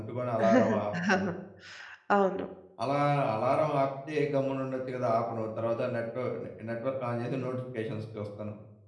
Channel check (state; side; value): identical; both; correlation 1.00